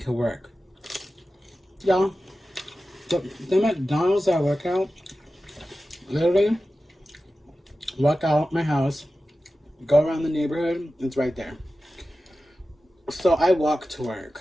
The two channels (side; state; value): both; normal; correlation 0.94